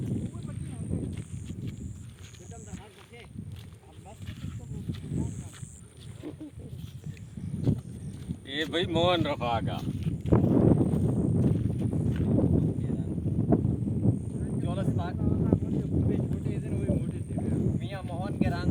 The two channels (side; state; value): both; identical; correlation 1.00